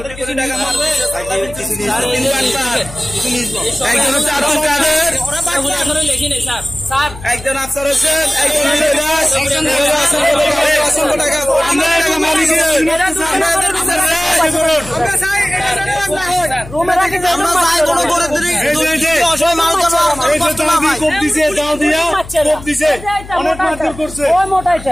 কিছু টাকা মারবে একজন আফসার হোসেন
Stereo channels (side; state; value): left; noise; hum, 15 dB below the sound